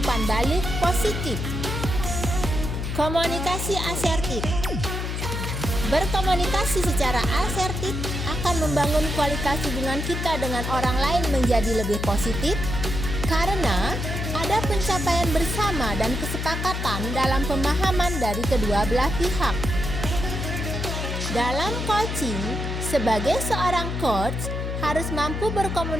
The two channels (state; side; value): noise; left; hum, 3 dB below the sound